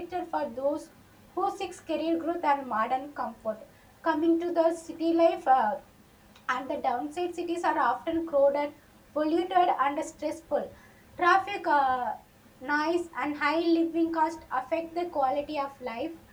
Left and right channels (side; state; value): both; identical; correlation 1.00